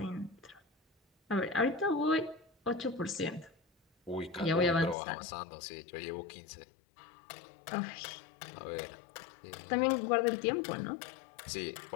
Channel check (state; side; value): drops out; right; at 5.0 s